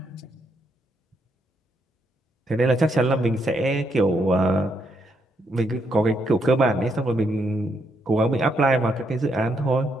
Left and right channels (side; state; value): both; normal; correlation 0.77